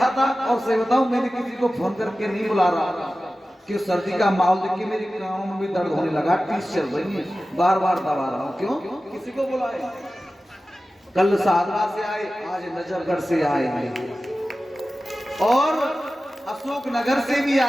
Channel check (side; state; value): both; normal; correlation 0.95